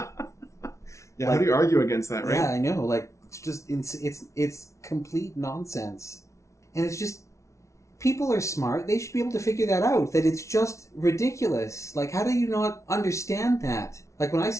Yeah, how do you argue against that, right? Yeah, I know. Like, it's just... It's complete nonsense. And it's just... People are smart. They should be able to figure that out. That it's just ridiculous. Like, how do you not understand that? Like, when I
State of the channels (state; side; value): late; right; 0.14 ms